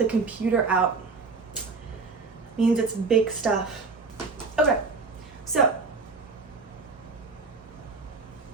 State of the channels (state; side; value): quieter; left; 4.2 dB